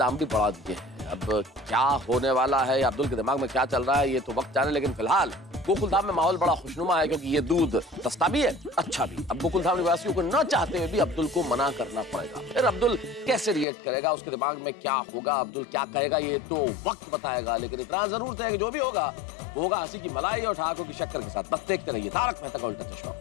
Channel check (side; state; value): right; drops out; at 13.7 s